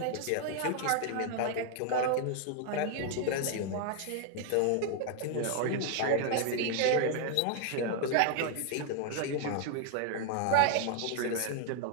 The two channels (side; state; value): both; different; correlation 0.00